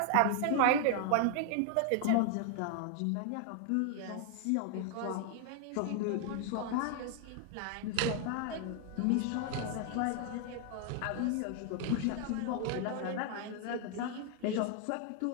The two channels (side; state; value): both; different; correlation 0.00